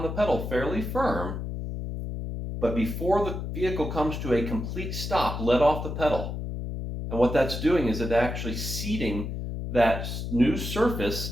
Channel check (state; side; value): noise; left; hum, 5 dB below the sound